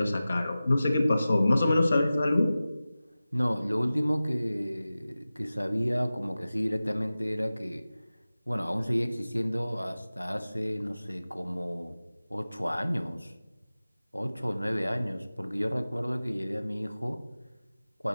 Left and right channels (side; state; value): both; inverted; correlation -0.96